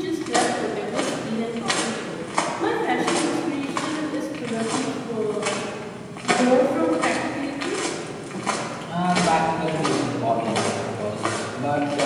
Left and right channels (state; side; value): identical; both; correlation 1.00